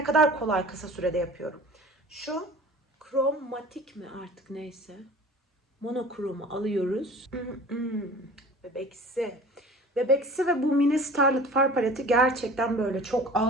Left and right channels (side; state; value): both; normal; correlation 0.43